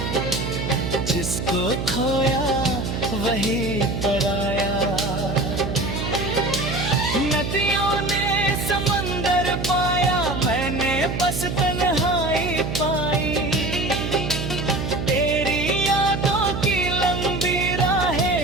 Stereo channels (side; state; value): right; noise; hum, 4 dB below the sound